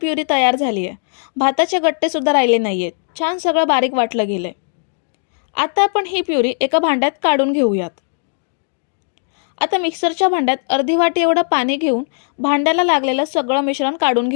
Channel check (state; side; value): silent; right; digital silence